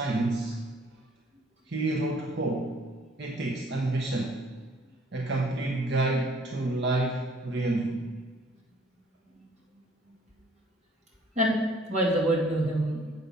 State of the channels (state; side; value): normal; both; correlation 0.59